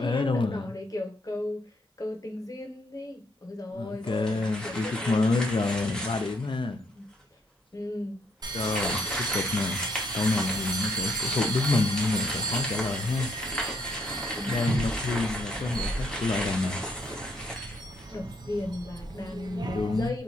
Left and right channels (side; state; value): both; normal; correlation 0.71